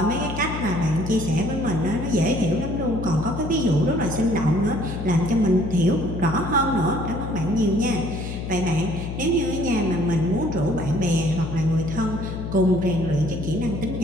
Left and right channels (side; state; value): left; noise; hum, 6 dB below the sound